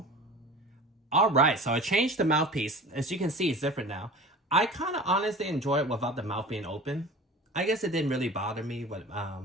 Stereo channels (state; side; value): normal; both; correlation 0.39